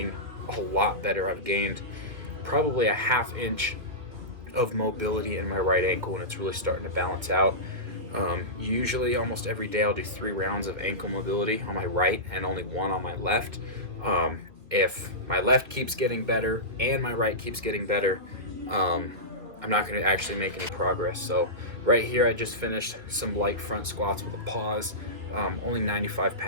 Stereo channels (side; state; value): left; late; 1.8 ms